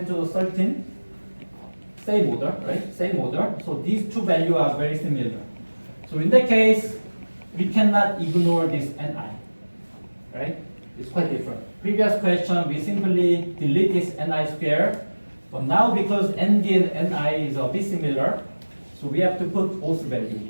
to the 13. Same order, right? Same order. So these two values are very similar. So in that case, we cannot ignore this Ni, right? It's quite different. Previous question, we simply delete this Ni square. But now because Nd and Ni is a bit similar, so we have to put both values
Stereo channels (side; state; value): both; inverted; correlation -1.00